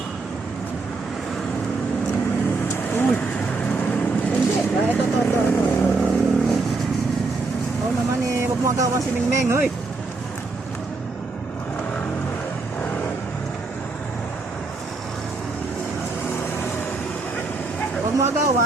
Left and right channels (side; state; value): left; quieter; 3.8 dB